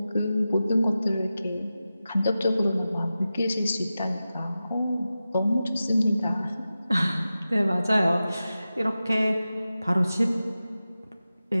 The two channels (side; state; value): both; inverted; correlation -0.93